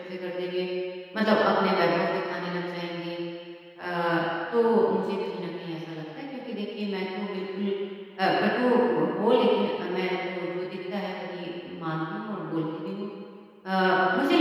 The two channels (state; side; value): identical; both; correlation 1.00